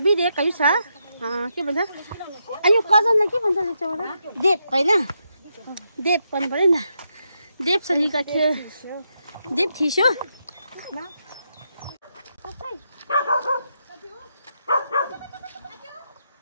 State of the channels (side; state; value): both; inverted; correlation -0.82